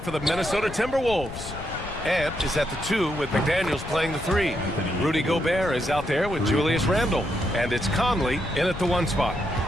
for the Minnesota Timberwolves. Ant is at the 2 with McDaniels playing the 3. Rudy Gobert is out there with Julius Randle. And it's Conley in at the 1 spot.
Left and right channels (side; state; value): left; noise; rumble, 11 dB below the sound